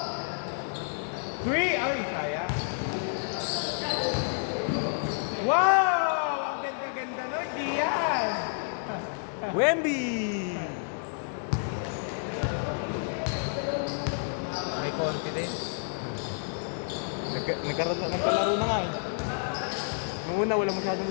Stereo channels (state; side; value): silent; right; digital silence